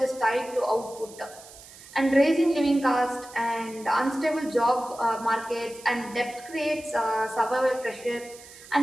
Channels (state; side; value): noise; right; hiss, 19 dB below the sound